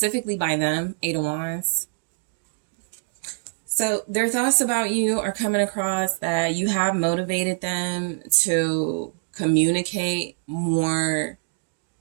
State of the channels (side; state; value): left; silent; digital silence